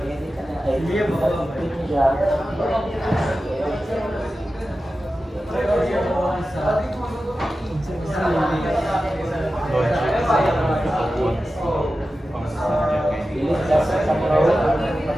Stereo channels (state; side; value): normal; both; correlation 0.93